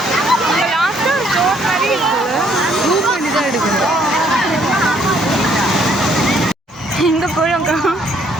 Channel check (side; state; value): both; normal; correlation 0.66